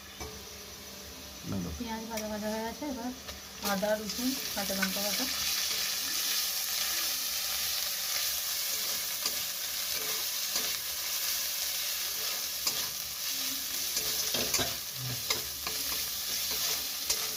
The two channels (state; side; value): identical; both; correlation 1.00